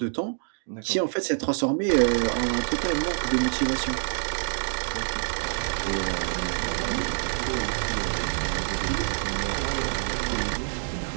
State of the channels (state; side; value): silent; left; digital silence